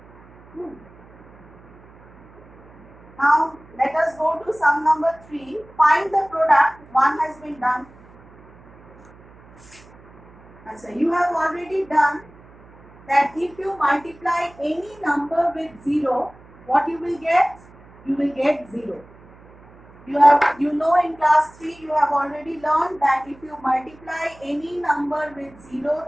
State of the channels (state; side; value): noise; right; hum, 24 dB below the sound